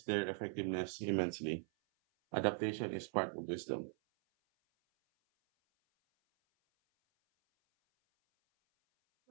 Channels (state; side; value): silent; left; 51 dB below the other